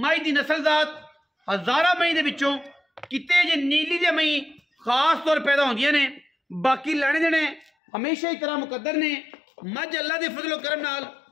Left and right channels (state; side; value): drops out; right; at 7.7 s